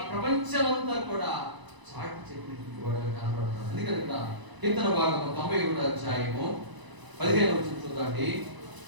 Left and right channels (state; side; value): late; left; 1.0 ms